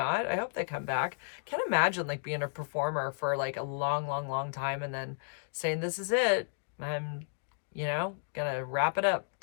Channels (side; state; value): right; silent; digital silence